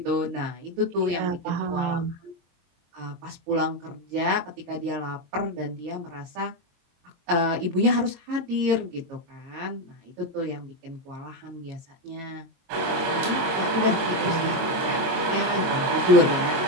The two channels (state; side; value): late; left; 23 ms